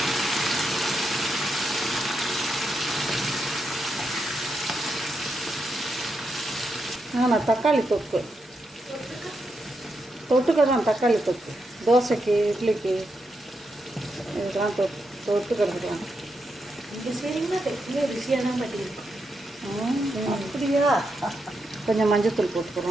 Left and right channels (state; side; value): normal; both; correlation 0.84